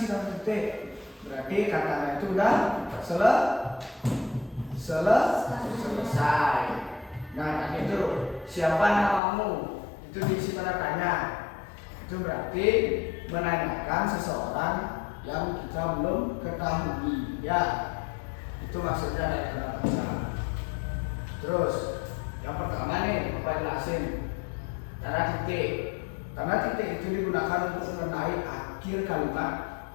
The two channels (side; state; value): right; drops out; at 9.2 s